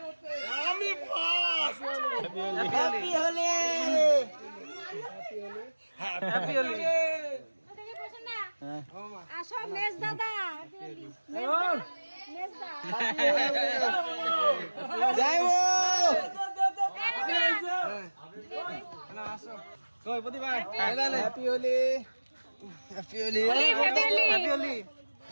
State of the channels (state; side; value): inverted; both; correlation -1.00